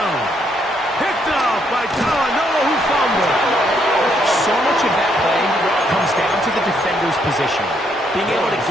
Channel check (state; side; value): normal; both; correlation 0.73